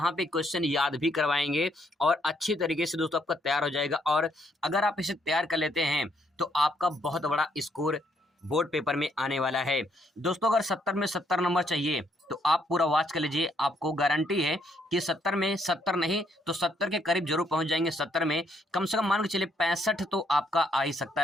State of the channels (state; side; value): normal; both; correlation 0.72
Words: पे क्वेश्चन याद भी करवाएंगे और अच्छी तरीके से दोस्तों आपका तैयार हो जाएगा। और अगर आप इसे तैयार कर लेते हैं तो आपका बहुत बड़ा स्कोर बोर्ड पेपर में आने वाला है। दोस्तों अगर 70 में 70 नंबर चाहिए तो आप पूरा वॉच कर लीजिए। आपको गारंटी है कि 70 में 70 नहीं तो 70 के करीब जरूर पहुंच जाएंगे। 70 में कम से कम मान के चलिए 65 तो आपका आ ही सकता